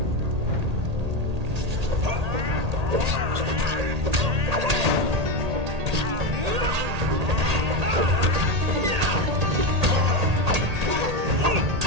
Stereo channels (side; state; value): left; late; 1.8 ms